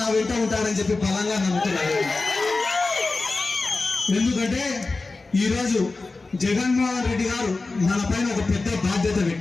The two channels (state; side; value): quieter; right; 3.6 dB